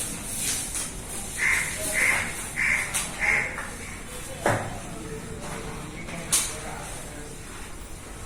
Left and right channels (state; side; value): identical; both; correlation 1.00